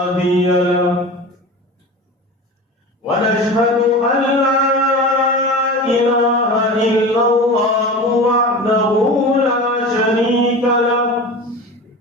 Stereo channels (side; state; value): both; normal; correlation 0.32